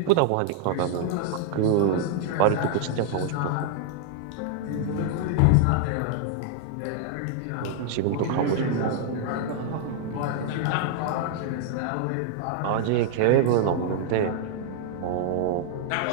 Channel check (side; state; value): both; different; correlation 0.00